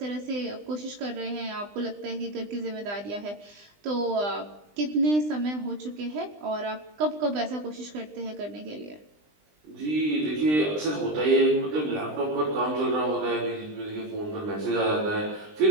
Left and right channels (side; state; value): left; late; 20 ms